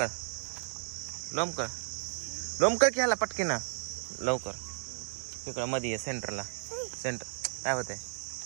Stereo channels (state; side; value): silent; left; 55 dB below the other